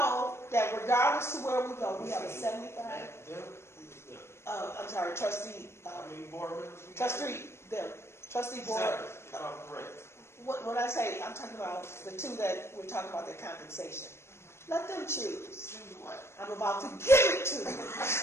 that regardless to where we go, we have a 75. I'm sorry, trustee. Board members? Trustee board. Correct. When I say, I'm talking about the two that we're talking about their compensation. Let them choose. Choose what? I'm about to give it to them.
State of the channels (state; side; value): late; right; 0.12 ms